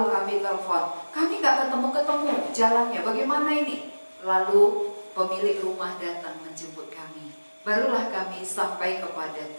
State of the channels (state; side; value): inverted; both; correlation -1.00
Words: kami telepon. Kami gak ketemu-ketemu jalannya, bagaimana ini? Lalu pemilik rumah datang menjemput kami. Barulah kami sampai kepada